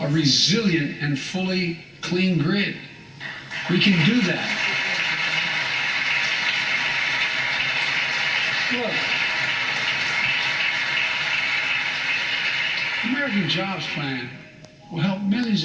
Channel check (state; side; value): identical; both; correlation 1.00